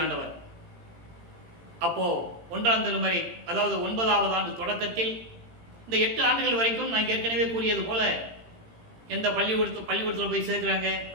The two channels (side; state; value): left; late; 18 ms